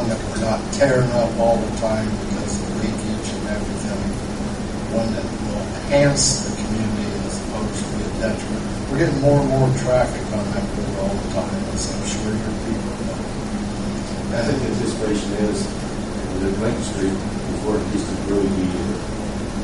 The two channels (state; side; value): identical; both; correlation 1.00